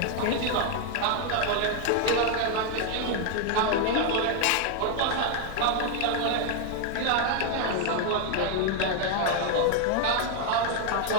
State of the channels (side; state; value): both; different; correlation 0.00